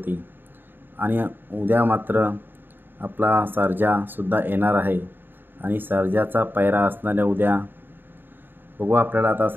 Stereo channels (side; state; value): left; late; 0.095 ms